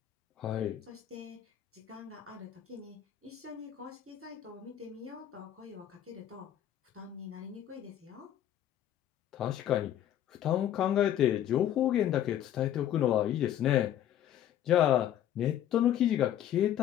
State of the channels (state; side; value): quieter; right; 11.2 dB